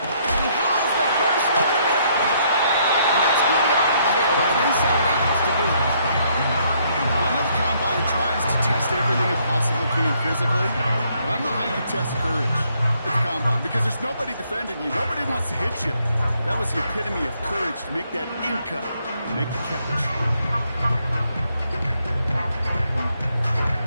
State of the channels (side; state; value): both; inverted; correlation -0.70